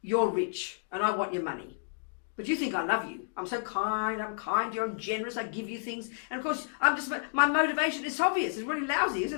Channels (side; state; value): right; silent; digital silence